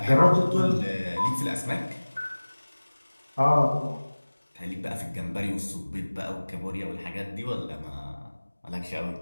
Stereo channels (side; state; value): both; inverted; correlation -1.00